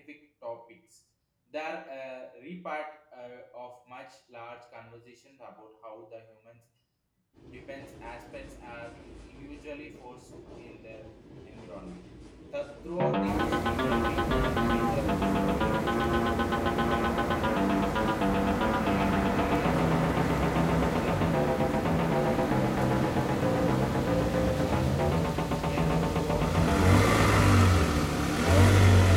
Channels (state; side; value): identical; both; correlation 1.00